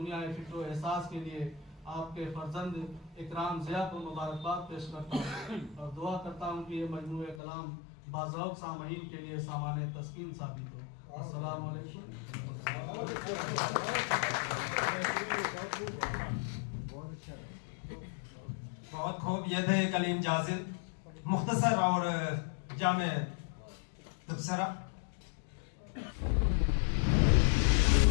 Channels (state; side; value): drops out; right; at 7.4 s